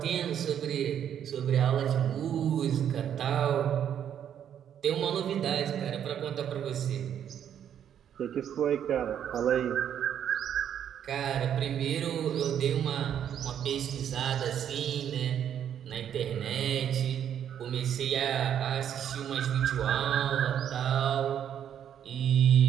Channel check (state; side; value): quieter; left; 9.4 dB